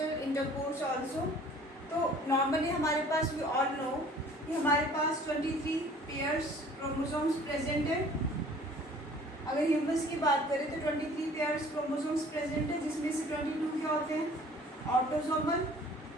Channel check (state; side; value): normal; both; correlation 0.51